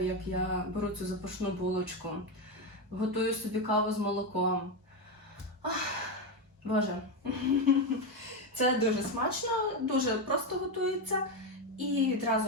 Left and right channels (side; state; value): both; normal; correlation 0.10